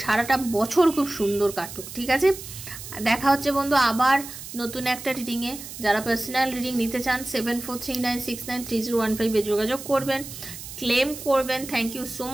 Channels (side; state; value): right; noise; hiss, 12 dB below the sound